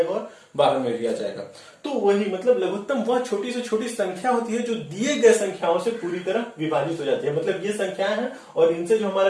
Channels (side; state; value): both; identical; correlation 1.00